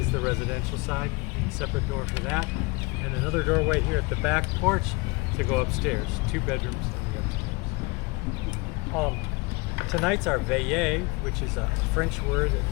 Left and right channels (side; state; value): right; quieter; 26.4 dB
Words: the residential side, separate door for that. And another doorway here at the back porch to go upstairs. 2 bedrooms on the upstairs. Tonight's our Valle, which is a French word that